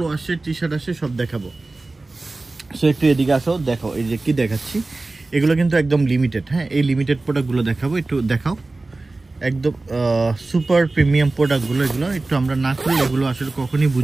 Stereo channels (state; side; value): quieter; left; 3.3 dB